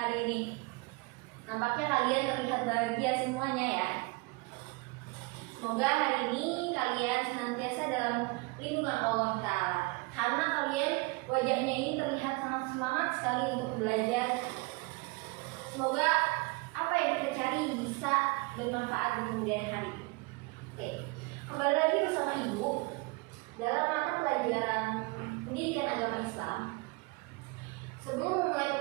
ini? Nampaknya kalian terlihat bahagia semuanya ya. Semoga hari ini kalian senantiasa dalam lindungan Allah Ta'ala. Karena kalian wajahnya ini terlihat sangat semangat sekali untuk belajar. Semoga apa yang kita cari bisa bermanfaat di kemudian hari. Oke, kembali lagi bersama Ibu dalam mata pelajaran pendidikan agama Islam. Sebelum memulai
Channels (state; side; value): quieter; left; 26.4 dB